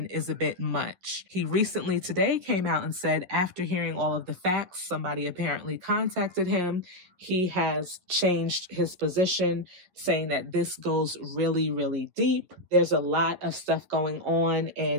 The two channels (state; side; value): late; left; 11 ms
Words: is a bit much. He recently today came out and said, after hearing all of the facts, somebody apparently contacted him. He has changed his position, saying that this goes really, really deep. There's a lot of stuff going on,